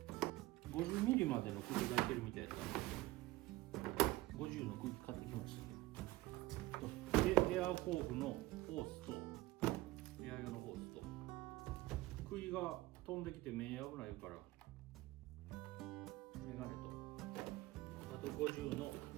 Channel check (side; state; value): left; quieter; 18.5 dB